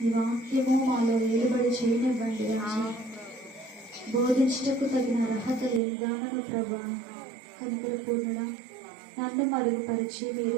ఈ వాక్యము మాలో వేలుబడి చేయనివ్వండి రాజా. బోధించటకు తగిన అర్హత లేదానను ప్రభు. కనికర పూర్ణుడా, నన్ను మరుగుపరిచి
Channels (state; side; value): drops out; left; at 5.8 s